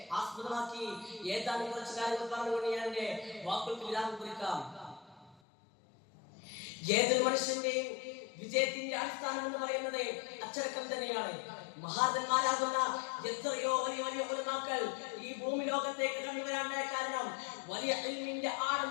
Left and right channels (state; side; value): drops out; right; at 5.4 s